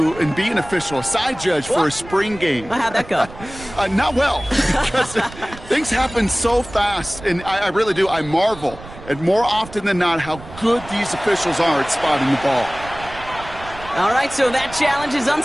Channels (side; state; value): right; noise; rumble, 16 dB below the sound